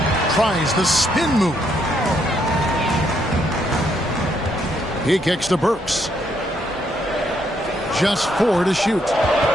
Tries the spin move. He kicks to Burks. Just 4 to shoot.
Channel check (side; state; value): both; normal; correlation 0.74